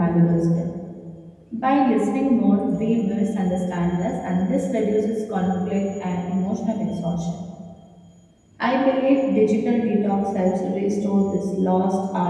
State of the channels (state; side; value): identical; both; correlation 1.00